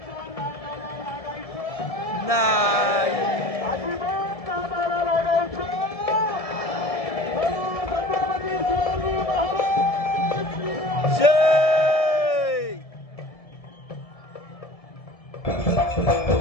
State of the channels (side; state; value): right; late; 1.7 ms